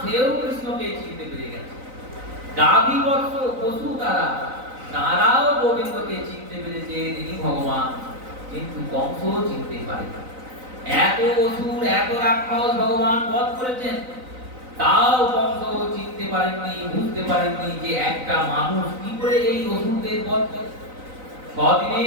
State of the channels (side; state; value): left; late; 3.9 ms